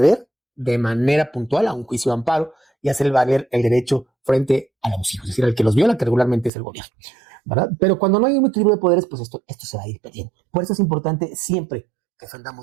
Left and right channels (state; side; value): drops out; left; at 6.5 s